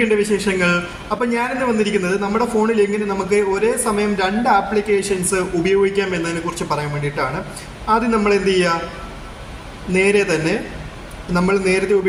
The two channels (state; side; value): identical; both; correlation 1.00